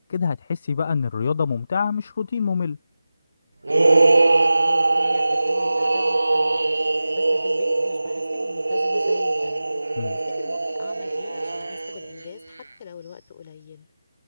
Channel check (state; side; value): inverted; both; correlation -0.95